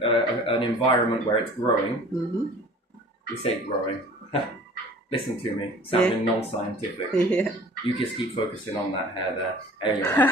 environment where it's growing, Mm-hmm. we say growing. Listen to me, sounding non-scientific. Yeah. You just keep focusing on that hair there.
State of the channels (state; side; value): normal; both; correlation 0.47